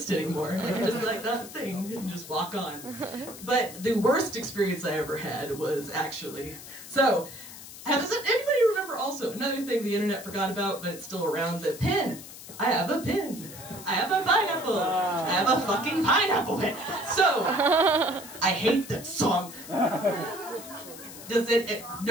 anymore. Like, just like that thing, and just walk on. But the worst experience I ever had was actually, so, does anybody remember also, another thing the internet forgot about, but it's still around, the pin. I have a pin. I have a pineapple. I have a fucking pineapple pin. So, I hate that song. Does it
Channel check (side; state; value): left; noise; hiss, 14 dB below the sound